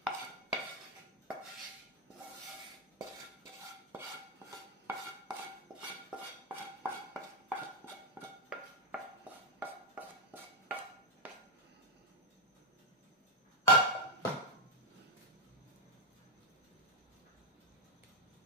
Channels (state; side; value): normal; both; correlation -0.01